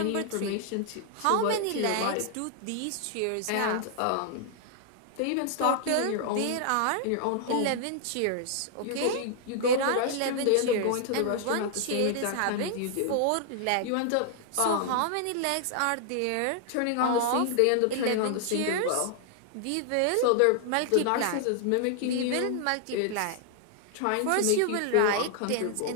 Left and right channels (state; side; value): different; both; correlation 0.00